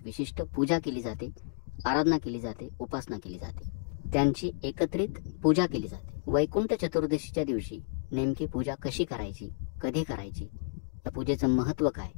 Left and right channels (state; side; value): silent; right; digital silence